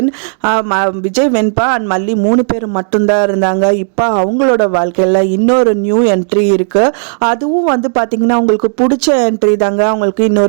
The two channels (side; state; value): left; silent; digital silence